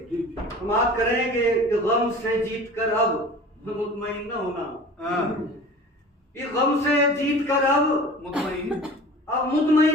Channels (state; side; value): normal; both; correlation 0.40